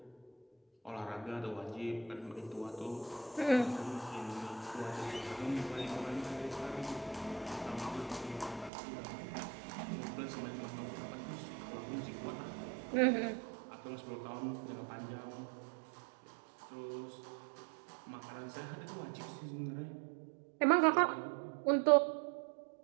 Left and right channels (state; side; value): drops out; left; at 8.7 s